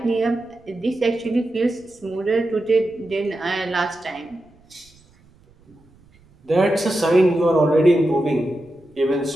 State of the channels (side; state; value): right; noise; rumble, 30 dB below the sound